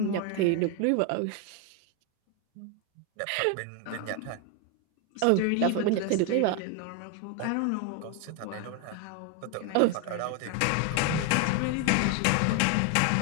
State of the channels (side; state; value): both; different; correlation 0.01